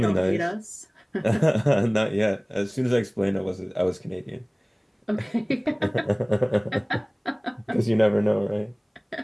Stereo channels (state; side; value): identical; both; correlation 1.00